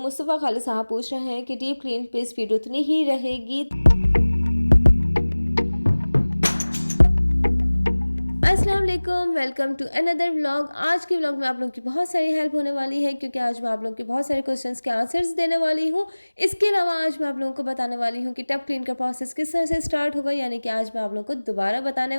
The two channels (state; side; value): inverted; both; correlation -1.00